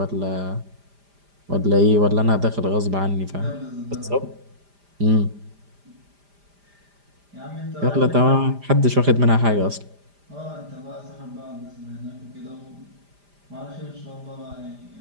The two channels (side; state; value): left; late; 5.0 ms